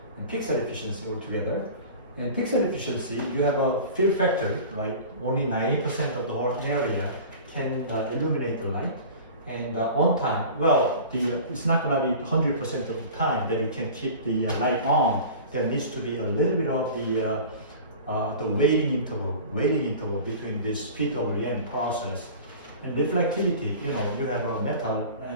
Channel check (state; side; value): inverted; both; correlation -0.39